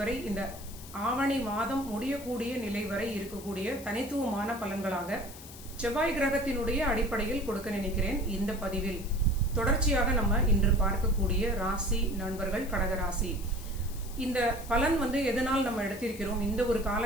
வரை இந்த ஆவணி மாதம் முடியக்கூடிய நிலை வரை இருக்கக்கூடிய தனித்துவமான பலன்களாக செவ்வாய் கிரகத்தினுடைய அடிப்படையில் கொடுக்க நினைக்கிறேன். இந்த பதிவில் தொடர்ச்சியாக நம்ம இன்று பார்க்கக்கூடிய ராசி நண்பர்கள் கடகராசி. இந்த பலன் எதனால் நம்ம எடுத்திருக்கிறோம், இந்த ஒரு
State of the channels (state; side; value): noise; left; hiss, 16 dB below the sound